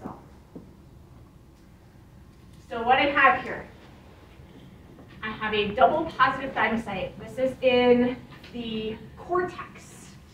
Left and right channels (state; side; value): identical; both; correlation 1.00